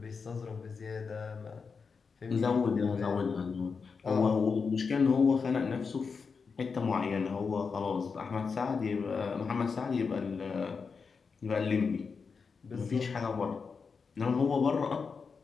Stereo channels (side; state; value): right; quieter; 5.3 dB